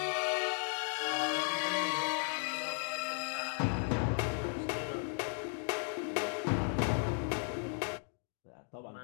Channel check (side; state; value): right; silent; 54 dB below the other